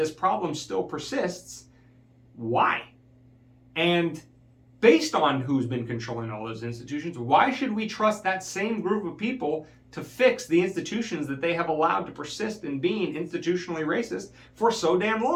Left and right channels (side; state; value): both; identical; correlation 1.00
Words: problem still persists, why? And based on who's been controlling all those institutions, why should we trust that same group of people to fix the institutions that they have allowed to persist in being institutionally racist for so damn